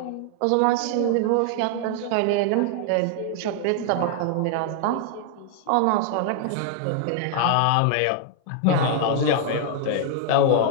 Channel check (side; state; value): both; different; correlation 0.00